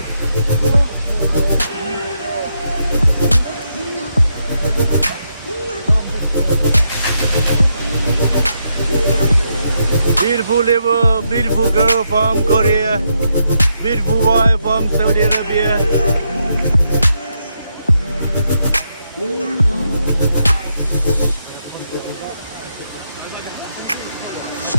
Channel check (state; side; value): inverted; both; correlation -0.81